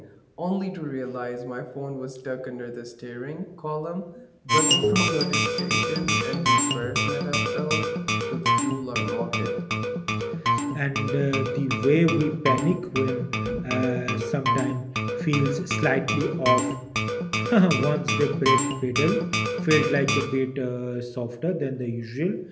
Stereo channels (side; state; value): both; identical; correlation 1.00